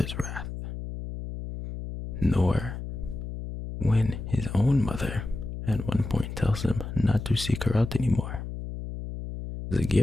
wrath. Nor when his own mother at one point tells him not to seek her out anymore.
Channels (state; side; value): noise; left; hum, 8 dB below the sound